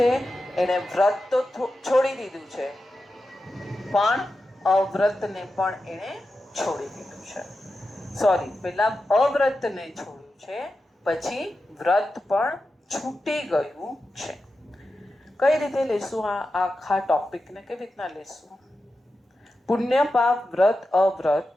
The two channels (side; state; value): both; normal; correlation 0.91